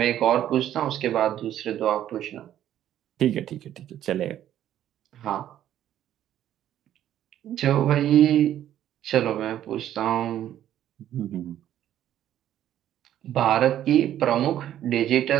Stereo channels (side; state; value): left; quieter; 11.6 dB